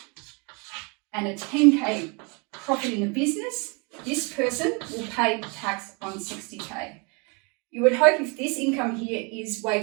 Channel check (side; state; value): left; quieter; 31.7 dB